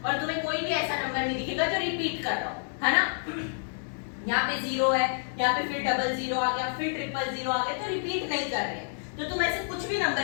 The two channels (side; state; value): right; silent; digital silence